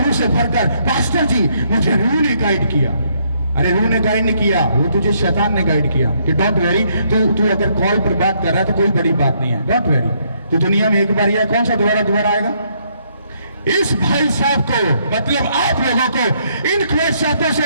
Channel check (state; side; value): inverted; both; correlation -0.71